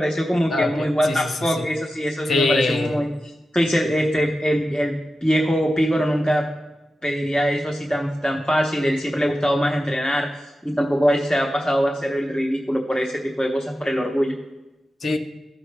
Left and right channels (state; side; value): normal; both; correlation 0.92